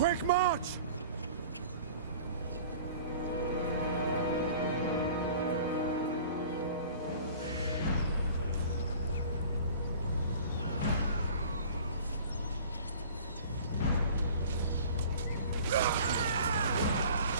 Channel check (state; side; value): inverted; both; correlation -0.45